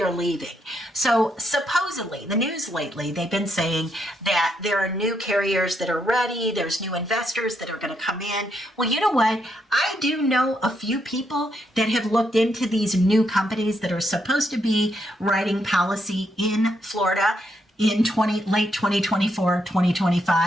leaving. So supposedly, the news lately, they've been saying that there are new carriers that are ready, there's new investors that are going to come in. Well, you know what? I do know a few people that have looked into these new companies that are supposed to be writing policy in Florida in late 2024,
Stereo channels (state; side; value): normal; both; correlation 0.78